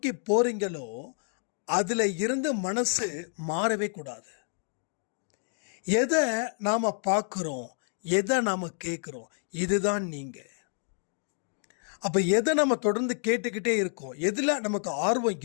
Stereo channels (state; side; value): silent; right; 59 dB below the other